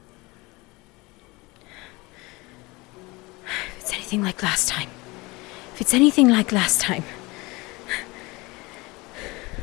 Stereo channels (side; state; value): right; quieter; 23.7 dB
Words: If it's anything like last time. If it's anything like last time.